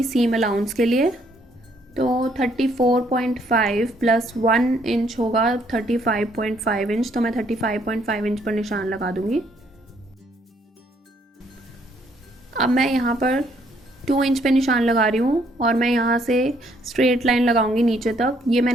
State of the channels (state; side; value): normal; both; correlation 0.68